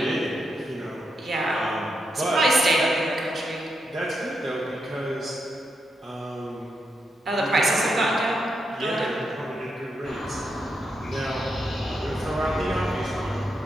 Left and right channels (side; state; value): both; normal; correlation 0.83